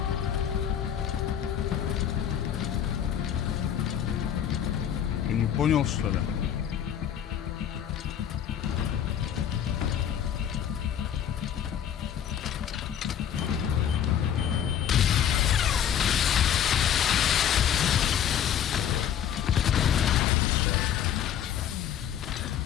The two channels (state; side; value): quieter; right; 9.4 dB